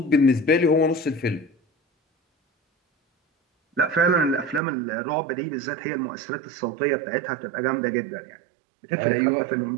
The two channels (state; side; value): drops out; left; at 4.6 s